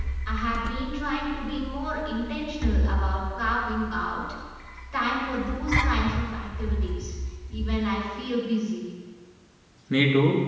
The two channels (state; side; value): identical; both; correlation 1.00